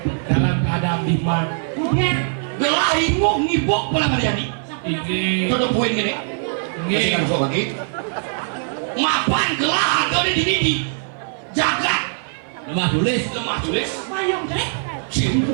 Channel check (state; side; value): silent; left; 58 dB below the other